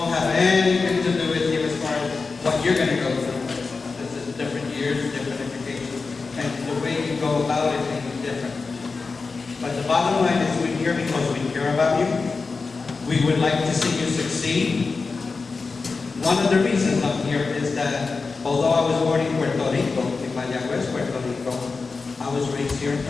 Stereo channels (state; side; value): quieter; right; 4.3 dB